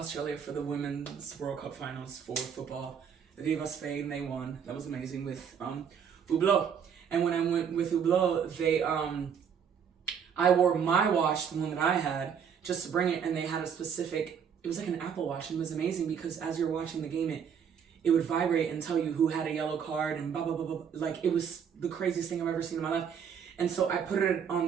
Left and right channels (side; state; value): left; quieter; 7.5 dB